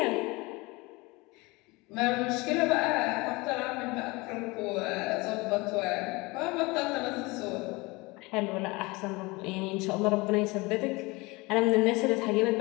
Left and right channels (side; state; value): right; quieter; 24.2 dB